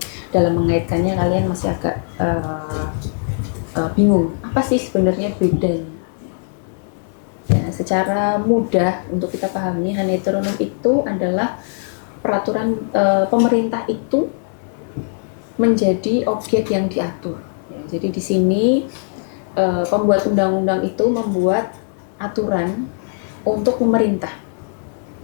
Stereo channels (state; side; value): silent; right; digital silence